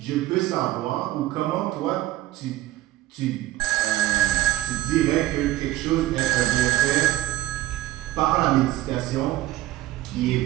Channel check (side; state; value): left; quieter; 16.1 dB